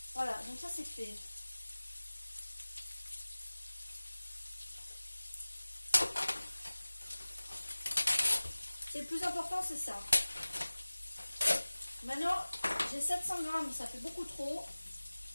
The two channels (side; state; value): both; inverted; correlation -1.00